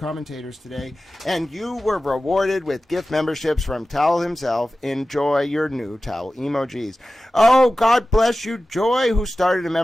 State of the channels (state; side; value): normal; both; correlation 0.95